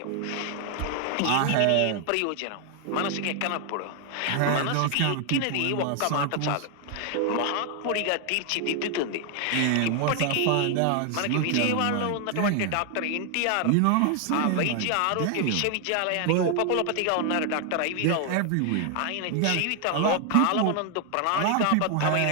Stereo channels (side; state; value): both; different; correlation 0.00